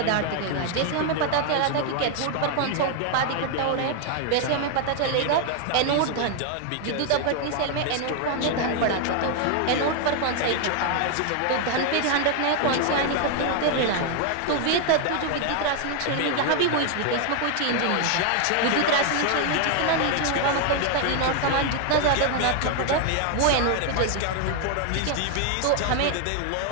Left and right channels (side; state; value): both; different; correlation 0.00